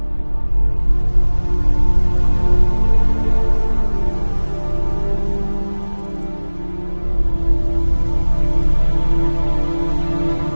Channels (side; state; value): both; inverted; correlation -1.00